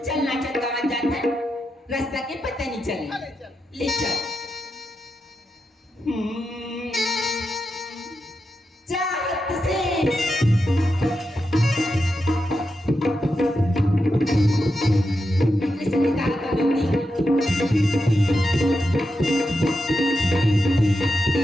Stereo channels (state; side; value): normal; both; correlation 0.87